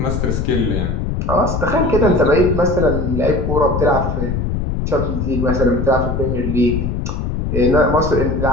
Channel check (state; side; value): noise; left; rumble, 1 dB below the sound